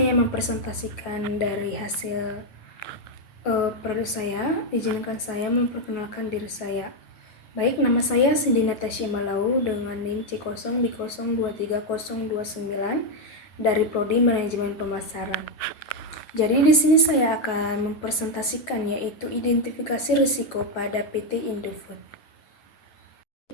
mempresentasikan dari hasil produk saya, izinkan saya memperkenalkan diri saya. Baik, nama saya Cindy Natasha Malau dengan NIM C0B023029 dari Prodi Manajemen Pemasaran. Jadi di sini saya akan mempresentasikan yaitu identifikasi risiko pada PT Indofood.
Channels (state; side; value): late; right; 9.3 ms